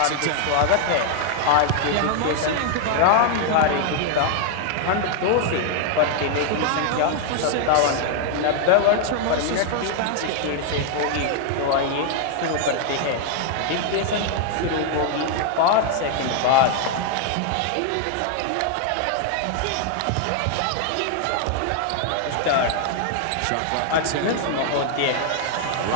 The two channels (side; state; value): both; different; correlation 0.00